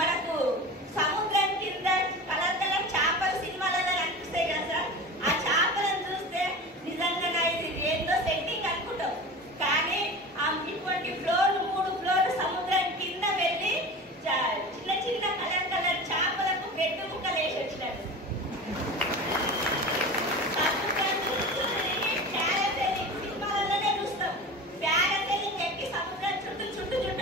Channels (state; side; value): normal; both; correlation 0.32